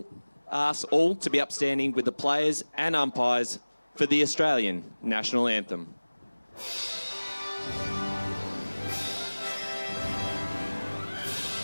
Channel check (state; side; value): inverted; both; correlation -1.00